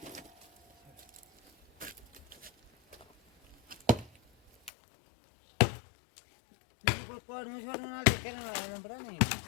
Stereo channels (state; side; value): drops out; right; at 4.7 s